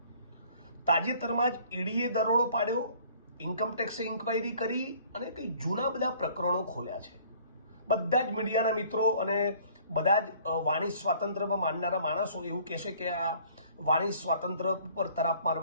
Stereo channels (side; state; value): both; inverted; correlation -0.55